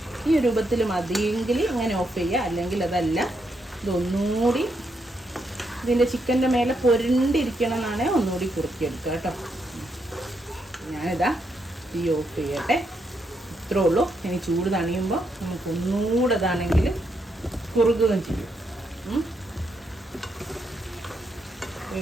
ഈ രൂപത്തിൽ മതിയെങ്കിൽ ഇങ്ങനെ ഓഫ് ചെയ്യുക, അല്ലെങ്കിൽ അതല്ല ഇതൊന്നുകൂടി ഇതിൻ്റെ ചിക്കൻ്റെ മേലെ പൊരണ്ടിരിക്കണം എന്നാണ് ഒന്നുകൂടി കുറുക്കിയെടുക്കുക കേട്ടോ. ഞാനിതാ തീ ഓഫ് ചെയ്യട്ടെ. ഇത്രേ ഉള്ളൂ. ഇനി ചൂട് തണിയുമ്പോൾ നമുക്ക് ഒന്നുകൂടെ ഇതാണെങ്കിൽ കുറുകുകയും ചെയ്യും. ഈ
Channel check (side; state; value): both; normal; correlation 0.79